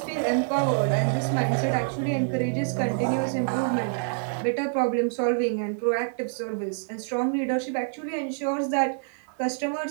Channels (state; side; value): silent; left; 61 dB below the other